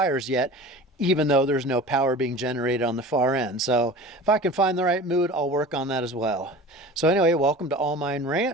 yet, even though there's no power being generated on the far end. So if I can find the right mood, I'll work on that as well. So anyway, welcome to All Mine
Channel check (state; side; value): normal; both; correlation 0.37